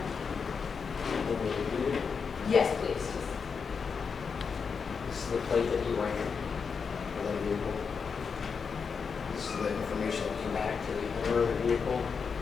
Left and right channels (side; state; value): right; quieter; 5.8 dB